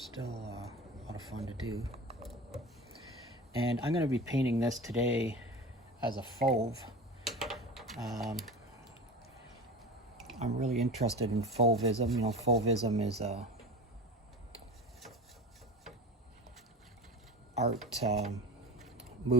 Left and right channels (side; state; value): both; normal; correlation 0.32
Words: still a lot of fun to do. And I'm going to be painting this today as a fauve. I'm really interested in Fauvism. You know, Fauvism is a art